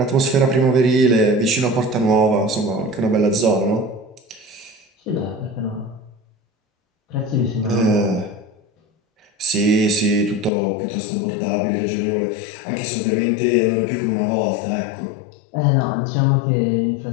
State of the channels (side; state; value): right; drops out; at 10.5 s